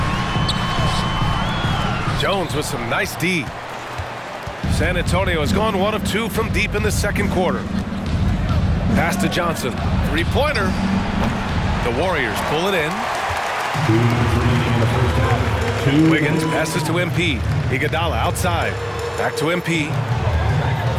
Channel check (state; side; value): identical; both; correlation 1.00